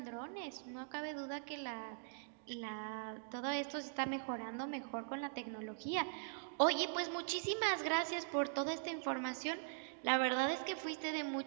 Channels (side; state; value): left; silent; digital silence